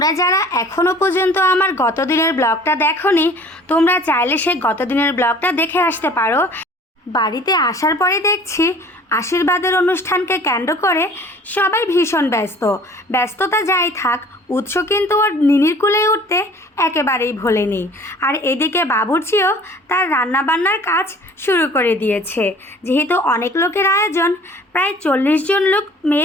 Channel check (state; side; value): normal; both; correlation 0.49